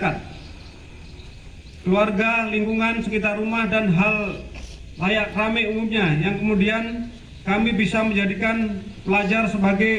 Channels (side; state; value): both; identical; correlation 1.00